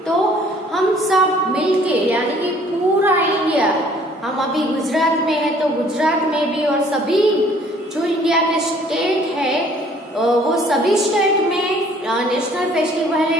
तो हम सब मिलके, यानी कि पूरा इंडिया, हम अभी गुजरात में है तो गुजरात में भी, और सभी जो इंडिया के स्टेट है वो सभी स्टेट में नेशनल फेस्टिवल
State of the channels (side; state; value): both; normal; correlation 0.57